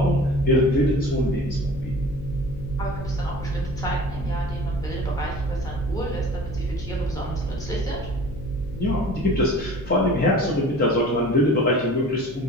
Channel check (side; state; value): left; noise; hum, 15 dB below the sound